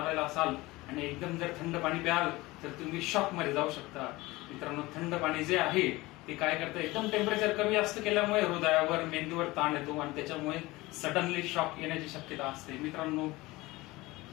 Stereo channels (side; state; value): right; quieter; 20.6 dB